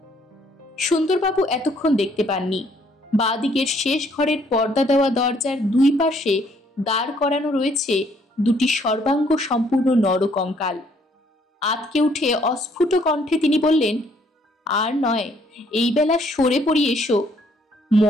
সুন্দরবাবু এতক্ষণ দেখতে পাননি। বাঁ দিকের শেষ ঘরের পর্দা দেওয়া দরজার দুই পাশে দাঁড় করানো রয়েছে দুটি সর্বাঙ্গ সম্পূর্ণ নরকঙ্কাল। আতকে উঠে অস্ফুট কণ্ঠে তিনি বললেন, আর নয়, এই বেলা সরে পড়ি এসো,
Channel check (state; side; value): normal; both; correlation 0.66